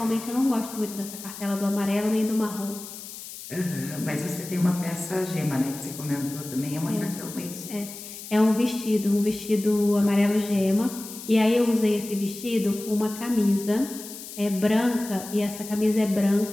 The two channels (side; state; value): left; noise; hiss, 12 dB below the sound